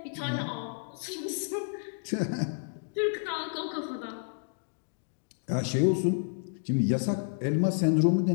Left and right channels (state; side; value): silent; right; digital silence